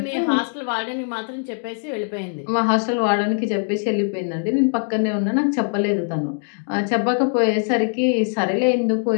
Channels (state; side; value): silent; right; digital silence